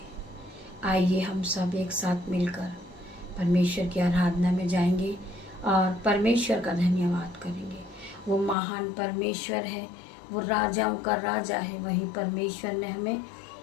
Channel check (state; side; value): drops out; right; at 8.6 s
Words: आइए हम सब एक साथ मिलकर परमेश्वर की आराधना में जाएंगे और परमेश्वर का धन्यवाद करेंगे। वो महान परमेश्वर है, वो राजाओं का राजा है। वही परमेश्वर ने हमें